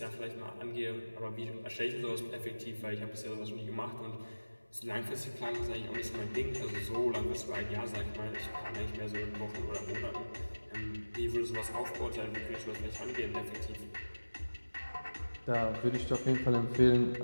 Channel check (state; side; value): inverted; both; correlation -1.00